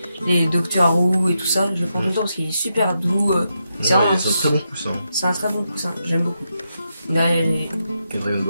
les Doctor Who et tout ça. Je prends tout le temps parce qu'il est super doux. C'est un très bon coussin. C'est un très bon coussin, j'aime beaucoup. Là, et Dragon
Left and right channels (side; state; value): both; inverted; correlation -0.85